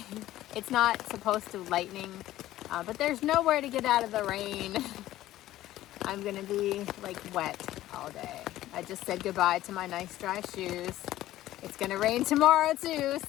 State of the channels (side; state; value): right; quieter; 14.7 dB